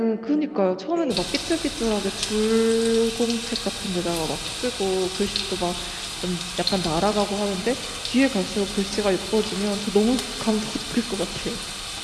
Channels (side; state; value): both; identical; correlation 1.00